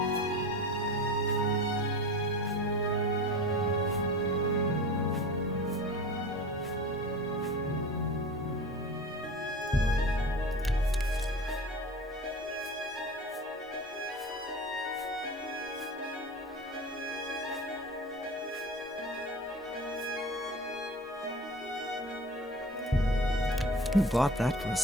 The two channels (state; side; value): normal; both; correlation 0.35